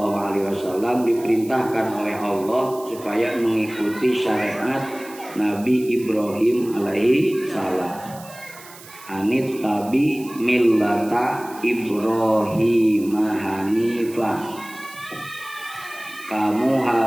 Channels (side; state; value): right; noise; hiss, 19 dB below the sound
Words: diperintahkan oleh Allah supaya mengikuti syariat Nabi Ibrahim alaihi salam. Anit tabi millata Ibrahim hanifah. Kamu